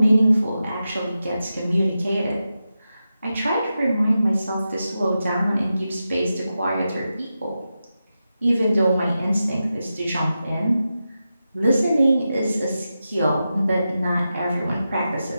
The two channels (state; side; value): inverted; both; correlation -0.91